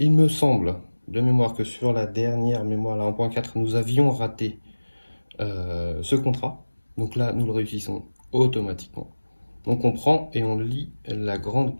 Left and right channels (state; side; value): inverted; both; correlation -1.00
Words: me semble de mémoire que sur la dernière mémoire, la 1.4, nous avions raté ce contrat. Donc là, nous le réussissons automatiquement. Donc on prend et on lit la grande